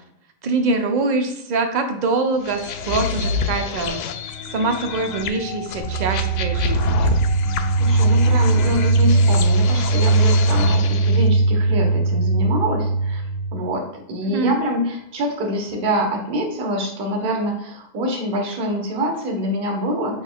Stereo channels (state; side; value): late; right; 2.0 ms